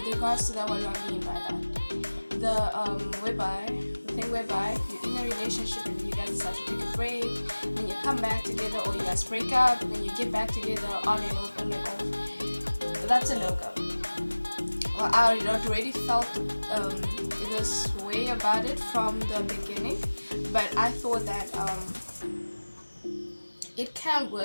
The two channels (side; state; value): both; inverted; correlation -1.00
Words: regards to that, what do I mean by that? The thing whereby you're in a relationship and you guys decide to take a break, then you come back together, or you guys break up and then you get back together, on and off, on and off. That's a no-go. Well, I already felt this way about it from the beginning, but I thought that it can